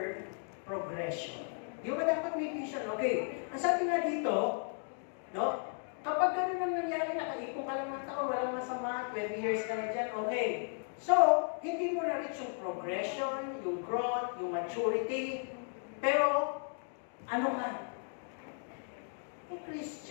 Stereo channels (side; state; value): right; silent; 54 dB below the other